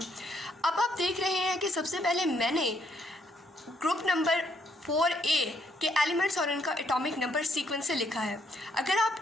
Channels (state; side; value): normal; both; correlation 0.71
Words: आप देख रहे हैं कि सबसे पहले मैंने ग्रुप नंबर 4A के एलिमेंट्स और उनका एटॉमिक नंबर सीक्वेंस से लिखा है। अगर